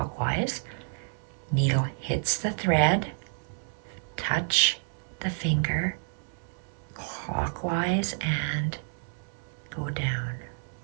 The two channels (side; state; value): left; silent; 58 dB below the other